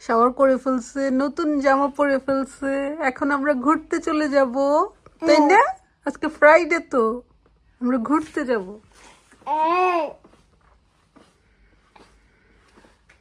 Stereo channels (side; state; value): both; identical; correlation 1.00